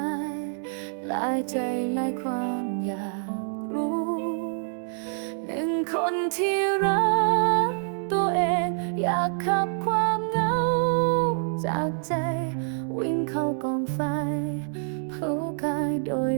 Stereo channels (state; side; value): silent; left; digital silence